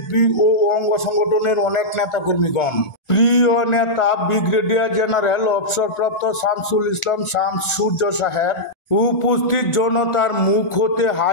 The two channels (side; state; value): right; late; 1.4 ms